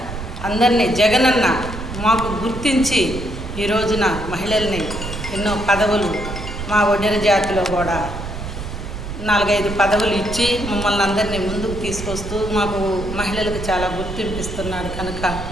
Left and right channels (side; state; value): right; noise; rumble, 8 dB below the sound